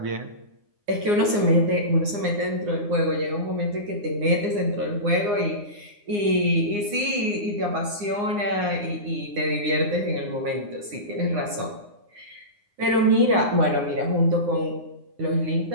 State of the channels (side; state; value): left; late; 9.7 ms